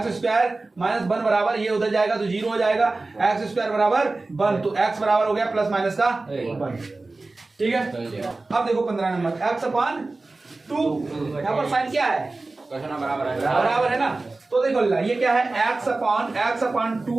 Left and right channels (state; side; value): quieter; left; 3.3 dB